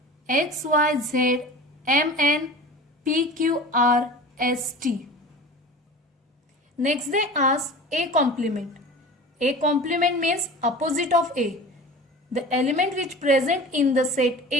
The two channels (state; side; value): normal; both; correlation 0.37